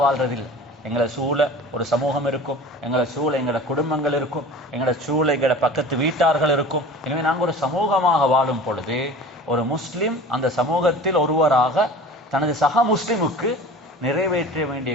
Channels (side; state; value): both; normal; correlation 0.39